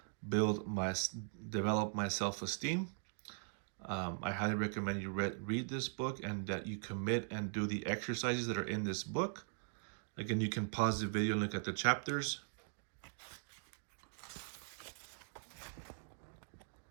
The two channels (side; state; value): left; silent; digital silence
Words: develop my self-esteem. I highly recommend you read this book and that you commit and do the exercises that are in this book. Again, you can pause the video and look at the chapters.